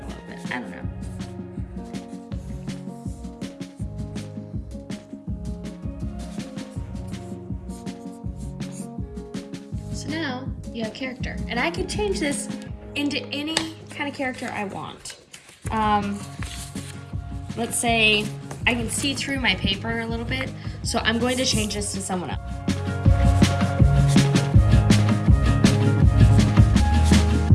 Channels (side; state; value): both; identical; correlation 1.00